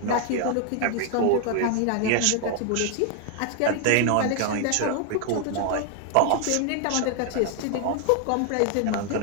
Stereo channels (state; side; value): different; both; correlation 0.00